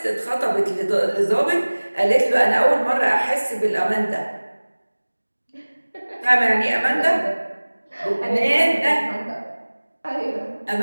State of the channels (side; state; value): both; inverted; correlation -1.00